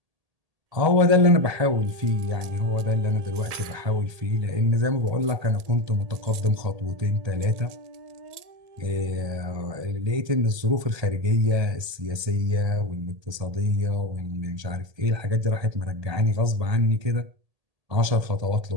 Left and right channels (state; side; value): late; left; 1.8 ms